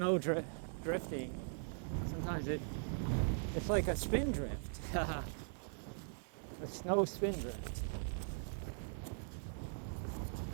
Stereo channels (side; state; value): left; silent; 51 dB below the other